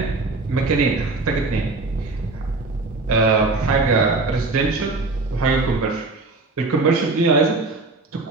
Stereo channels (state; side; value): quieter; left; 3.4 dB